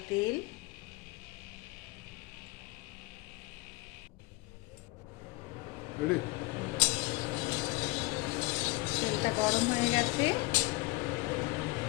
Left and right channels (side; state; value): right; quieter; 22.9 dB